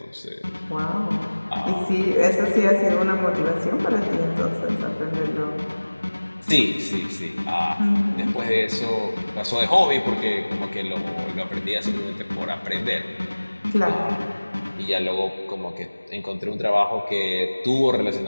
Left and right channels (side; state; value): both; inverted; correlation -1.00